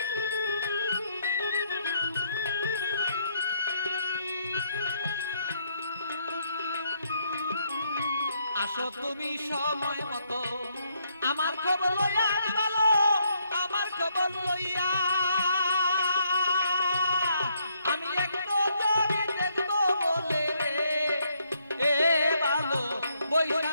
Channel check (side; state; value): both; inverted; correlation -0.73